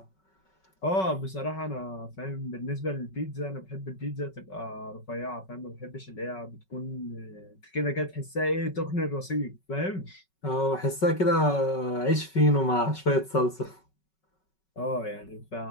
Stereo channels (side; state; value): right; late; 5.3 ms